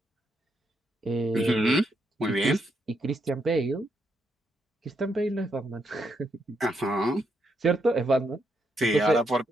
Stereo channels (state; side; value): normal; both; correlation 0.78